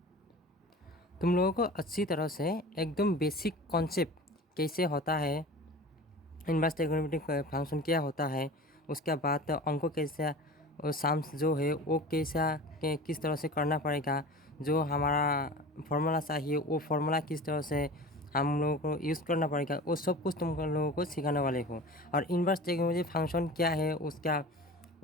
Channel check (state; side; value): normal; both; correlation 0.37